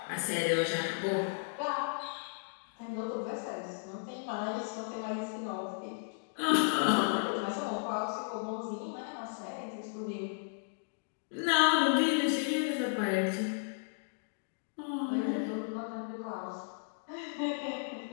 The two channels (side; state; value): right; silent; digital silence